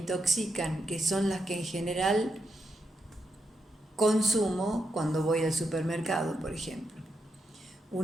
que son las que en general consumo cuando voy al supermercado, por ejemplo.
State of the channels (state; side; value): normal; both; correlation 0.83